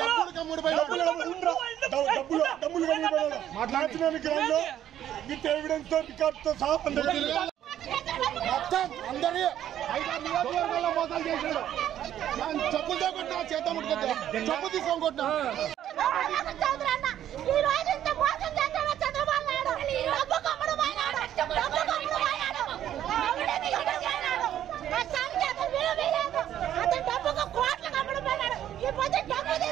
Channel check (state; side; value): quieter; left; 11.2 dB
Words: మాట్లాడుతున్న ఎవిడెన్స్ తో రికార్డుతో సహా మొత్తం అందరి 5 నియోజకవర్గాల్లో మోసాలు చేశాడు. చెప్పులతో కొట్టినా చేత ముట్టుకొద్దా చెప్పు తీసుకొని కొట్టినా